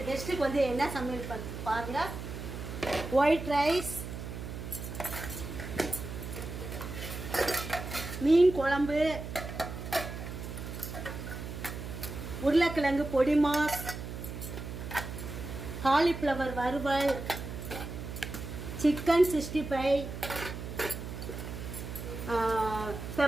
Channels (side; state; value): right; noise; hum, 8 dB below the sound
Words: கெஸ்ட்டுக்கு வந்து என்ன சமையல் பாருங்க. ஒயிட் ரைஸ், மீன் குழம்பு, உருளைக்கிழங்கு பொடி மாஸ், காலிஃப்ளவர் வறுவல், சிக்கன் 65,